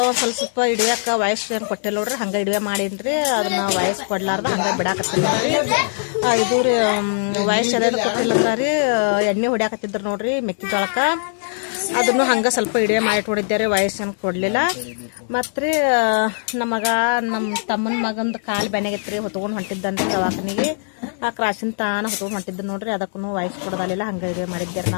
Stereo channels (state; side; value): silent; right; 65 dB below the other